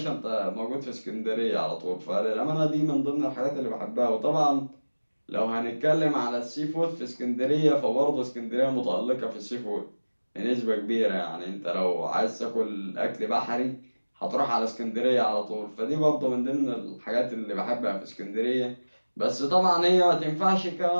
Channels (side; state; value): both; inverted; correlation -1.00